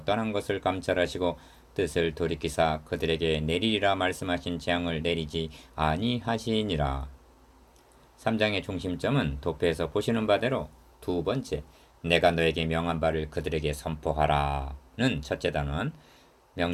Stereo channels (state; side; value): identical; both; correlation 1.00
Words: 떠난 것을 감찰하시고 뜻을 돌이키사 그들에게 내리리라 말씀하신 재앙을 내리지 아니하시니라. 3장의 중심점은 도표에서 보시는 바대로 두 번째, 내가 너에게 명한 바를 그들에게 선포하라는 첫째 단원,